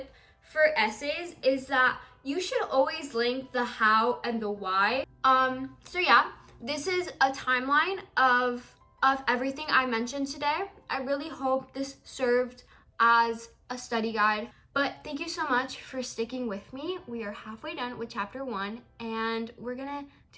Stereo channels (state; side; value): identical; both; correlation 1.00